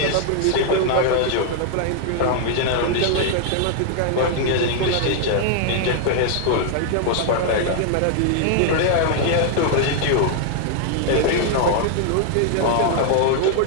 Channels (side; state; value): both; different; correlation 0.00